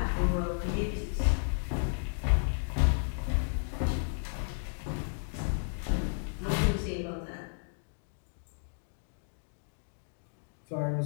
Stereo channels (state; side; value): silent; right; digital silence